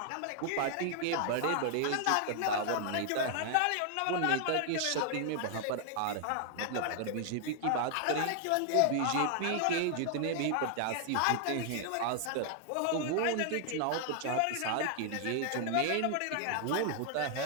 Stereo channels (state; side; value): different; both; correlation 0.00